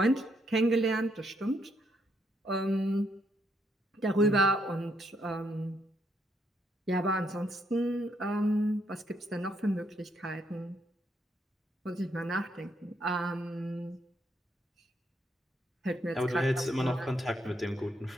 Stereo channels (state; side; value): normal; both; correlation 0.74